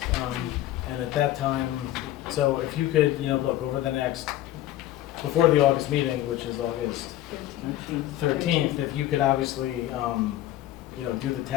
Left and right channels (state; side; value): quieter; right; 14.0 dB